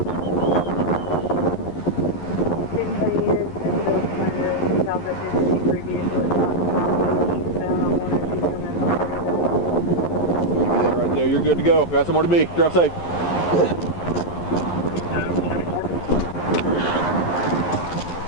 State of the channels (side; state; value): right; late; 11 ms